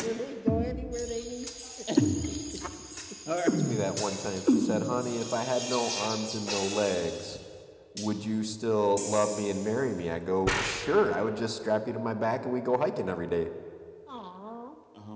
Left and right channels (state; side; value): identical; both; correlation 1.00